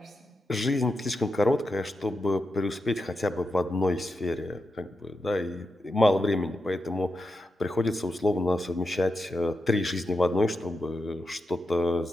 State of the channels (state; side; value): normal; both; correlation 0.88